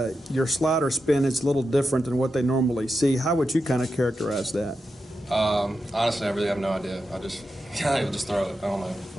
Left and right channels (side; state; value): both; normal; correlation 0.89